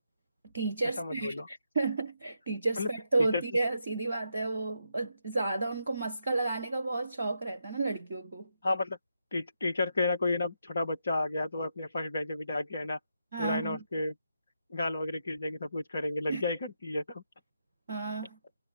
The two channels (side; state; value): both; inverted; correlation -0.81